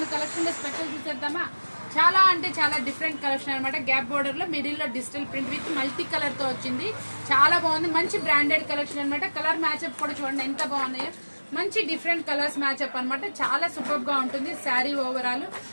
కలెక్షన్ లో స్పెషల్ చూసేద్దామా. చాలా అంటే చాలా డిఫరెంట్ కలెక్షన్ అనమాట. గ్యాప్ బోర్డర్ లో మిడిల్ లో digital print with multi colour తో వచ్చింది. చాలా బాగుంది, మంచి బ్రాండెడ్ కలెక్షన్ అనమాట. కలర్ మ్యాచ్అప్ కూడా చూడండి ఎంత బాగున్నాయో. మంచి డిఫరెంట్ కలర్స్ మ్యాచ్అప్ అనమాట. చాలా సూపర్ గా ఉంటుంది శారీ ఓవరాల్.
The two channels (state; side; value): inverted; both; correlation -1.00